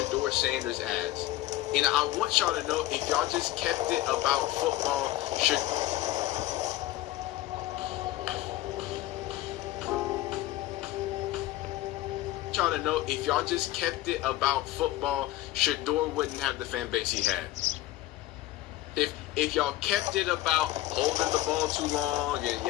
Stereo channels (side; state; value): right; quieter; 15.8 dB